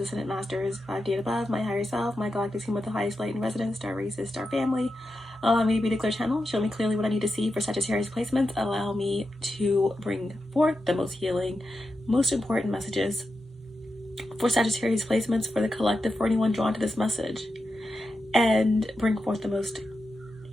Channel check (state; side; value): normal; both; correlation 0.89